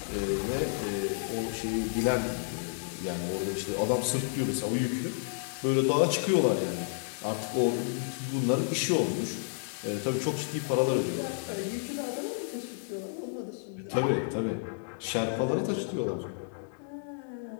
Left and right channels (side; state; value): right; silent; digital silence